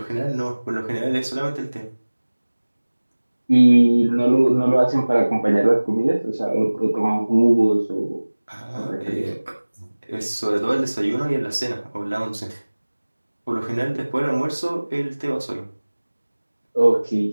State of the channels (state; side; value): inverted; both; correlation -1.00